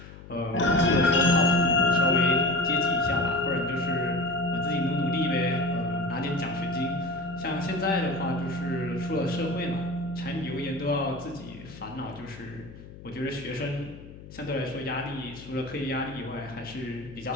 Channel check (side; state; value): left; noise; hum, 16 dB below the sound